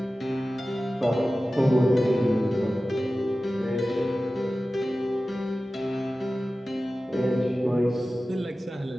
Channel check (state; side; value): normal; both; correlation 0.95